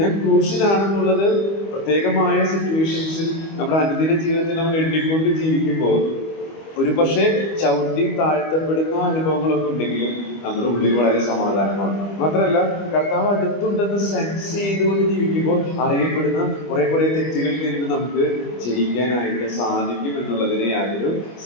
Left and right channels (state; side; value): late; right; 25 ms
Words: ഞാൻ ക്രൂശിലാണെന്നുള്ളത് പ്രത്യേകമായ സിറ്റുവേഷൻസിൽ നമ്മുടെ അനുദിന ജീവിതത്തിൽ നമ്മൾ എണ്ണിക്കൊണ്ട് ജീവിക്കുമ്പോൾ ഒരു പക്ഷേ ചവിട്ടി താഴ്ത്തപ്പെടുന്ന അനുഭവങ്ങളൊക്കെ ഉണ്ടെങ്കിലും നമ്മുടെ ഉള്ളിൽ വളരെ സമാധാനമാണ്. മാത്രമല്ല, കർത്താവ് അടുത്തുണ്ടെന്ന് സെൻസ് ചെയ്തുകൊണ്ട് ജീവിക്കുമ്പോൾ അറിയപ്പെടുന്ന കുറെ തെറ്റുകളിൽ നിന്ന് നമുക്ക് ജയിക്കാനായിട്ട് സാധിക്കും എന്നുള്ളതിന് യാതൊരു